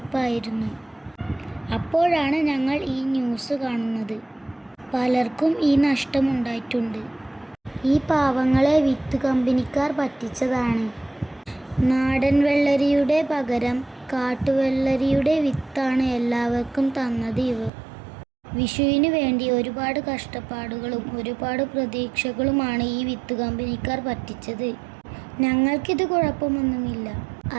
അപ്പോഴാണ് ഞങ്ങൾ ഈ ന്യൂസ് കാണുന്നത്. പലർക്കും ഈ നഷ്ടമുണ്ടായിട്ടുണ്ട്. ഈ പാവങ്ങളെ വിത്ത് കമ്പനിക്കാർ പറ്റിച്ചതാണ്. നാടൻ വെള്ളരിയുടെ പകരം കാട്ടുവെള്ളരിയുടെ വിത്താണ് എല്ലാവർക്കും തന്നത് ഇവർ. വിഷുവിന് വേണ്ടി ഒരുപാട് കഷ്ടപ്പാടുകളും ഒരുപാട് പ്രതീക്ഷകളുമാണ് ഈ വിത്ത് കമ്പനിക്കാർ പറ്റിച്ചത്. ഞങ്ങൾക്കിത് കുഴപ്പമൊന്നുമില്ല.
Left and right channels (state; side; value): drops out; left; at 17.7 s